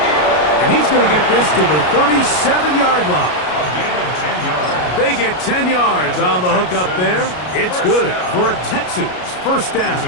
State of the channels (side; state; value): right; late; 33 ms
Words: And he's going to get this to the 37-yard line. A gain of 10 yards. They get 10 yards on the hook up there. It's good for a Texans first down. It's